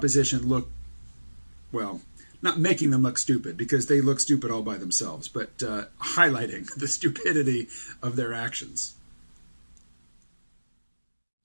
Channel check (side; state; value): both; inverted; correlation -1.00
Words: look, well, not making them look stupid, because they look stupid all by themselves, but highlighting the stupidity of their actions.